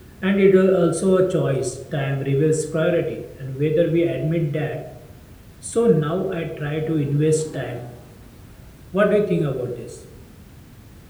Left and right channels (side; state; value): both; identical; correlation 1.00